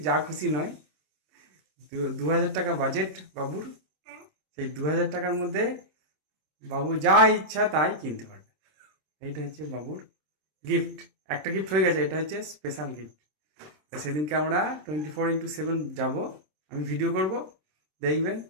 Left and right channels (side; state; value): left; late; 26 ms